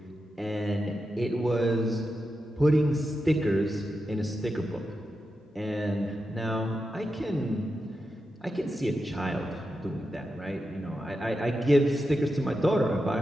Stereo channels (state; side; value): normal; both; correlation 0.89